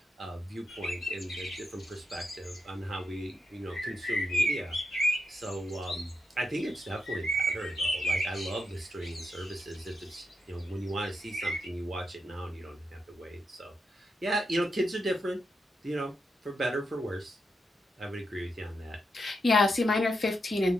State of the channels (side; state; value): both; normal; correlation 0.83